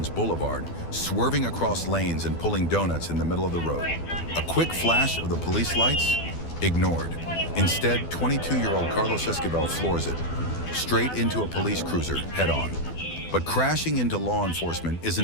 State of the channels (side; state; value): right; late; 12 ms